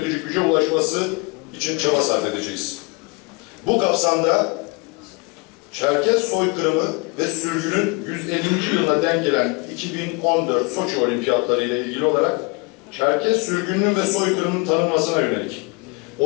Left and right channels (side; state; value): right; quieter; 28.4 dB